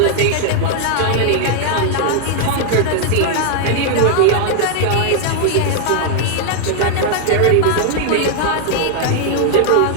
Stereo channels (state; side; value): different; both; correlation 0.00